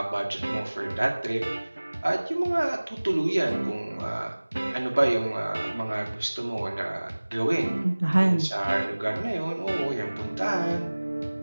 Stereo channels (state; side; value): inverted; both; correlation -1.00